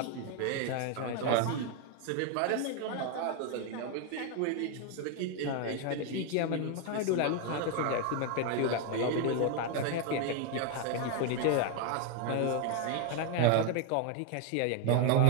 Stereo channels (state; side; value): different; both; correlation 0.01